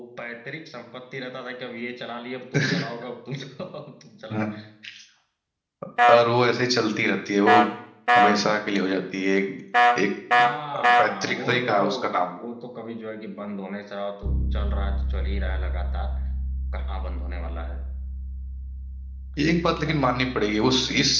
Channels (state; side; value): identical; both; correlation 1.00